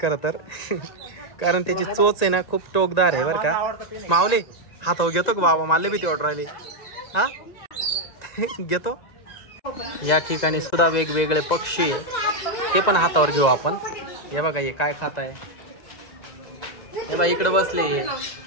खरं तर. कारण त्याची चोच आहे ना खूप टोकदार आहे बरं का. माऊली हातावर घेतो का बाबा. मला भीती वाटू राहिली. हा घेतो. या ठिकाणी सुद्धा वेगवेगळे पक्षी आहे ते पण हातावर घेऊ आपण. हे बघा हे काय खात आहे. हे बघा इकडे बसले.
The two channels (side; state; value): right; late; 1.9 ms